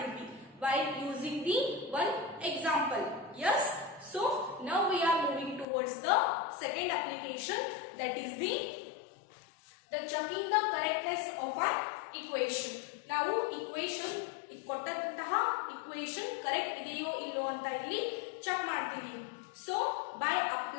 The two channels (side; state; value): right; drops out; at 5.7 s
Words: while using the one example. Yes, so now we are moving towards the second application, that is the checking the correctness of an equation. ನಾವು equation ಕೊಟ್ಟಂತಹ equation correct ಇದೆಯೋ ಇಲ್ಲೋ ಅಂತ ಇಲ್ಲಿ ಚೆಕ್ ಮಾಡ್ತೀವಿ. So by